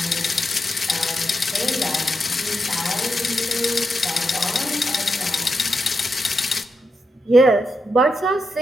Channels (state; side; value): normal; both; correlation 0.84